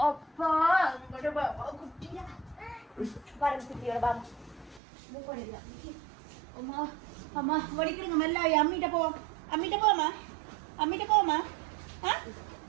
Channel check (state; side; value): drops out; left; at 4.8 s